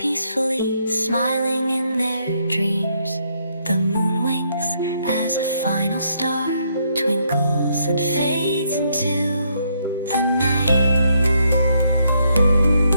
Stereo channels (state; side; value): inverted; both; correlation -0.73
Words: smiling in their dreams. The moon winks as a final star twinkles and fades into the night.